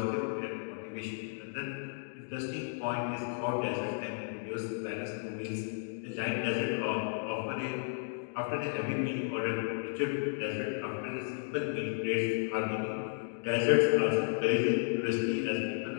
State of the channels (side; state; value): right; silent; digital silence